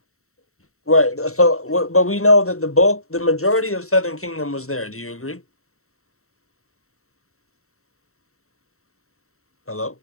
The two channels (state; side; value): late; right; 0.63 ms